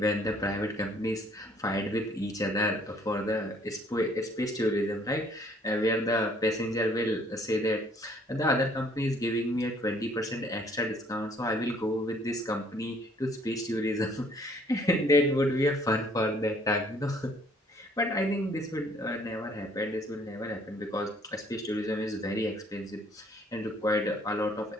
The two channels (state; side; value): normal; both; correlation 0.61